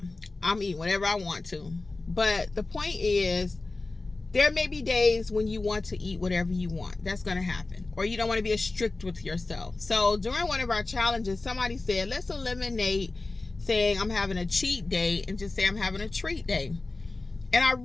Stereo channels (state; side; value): quieter; right; 3.3 dB